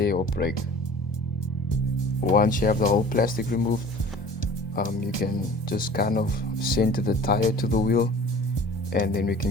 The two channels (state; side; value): normal; both; correlation 0.45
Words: or break. Once you have the whole plastic removed, you can just kind of center the tire to the wheel, and then we